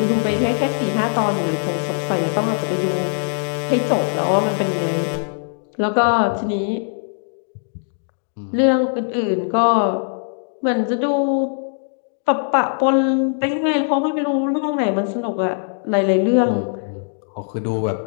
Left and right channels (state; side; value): silent; right; digital silence